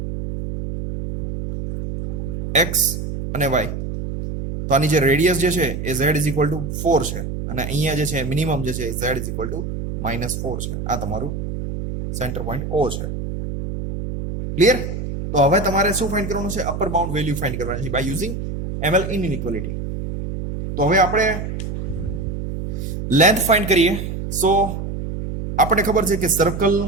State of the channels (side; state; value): right; noise; hum, 5 dB below the sound